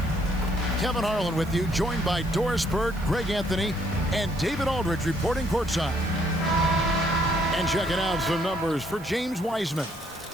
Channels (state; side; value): noise; right; hiss, 21 dB below the sound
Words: Kevin Harlan with you, joined by Doris Bird, Greg Anthony, and David Aldridge reporting courtside. And checking out some numbers for James Wiseman.